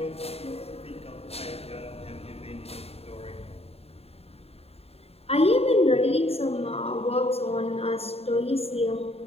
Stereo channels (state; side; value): late; right; 0.29 ms